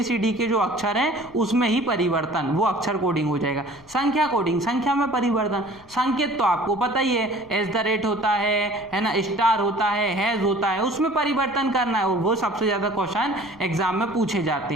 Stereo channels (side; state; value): left; noise; rumble, 26 dB below the sound